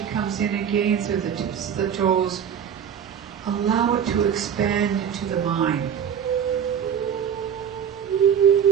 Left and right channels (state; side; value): quieter; left; 8.3 dB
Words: comes in again through the tips of the toes, allow it to expand into the mind.